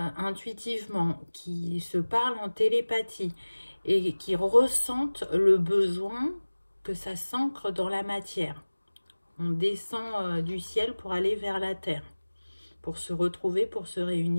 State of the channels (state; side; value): inverted; both; correlation -1.00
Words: qui se parlent en télépathie et qui ressentent le besoin que ça s'ancre dans la matière. On descend du ciel pour aller vers la terre, pour se retrouver, pour se